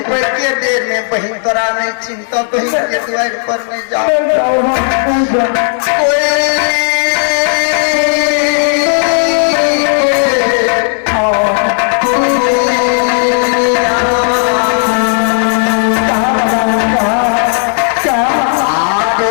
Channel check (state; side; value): silent; right; 61 dB below the other